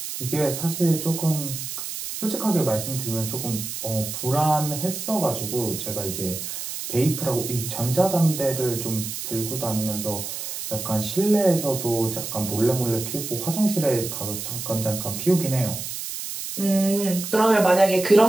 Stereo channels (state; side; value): noise; right; hiss, 6 dB below the sound